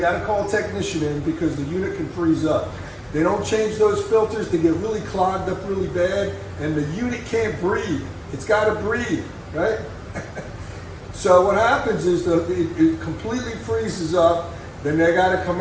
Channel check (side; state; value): both; identical; correlation 1.00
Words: to call a technician in because the unit can freeze up. They don't change those filters, they get really clogged up really bad, and the unit can't breathe. It's got to breathe, right? So what happens is it completely freezes up. Then they got to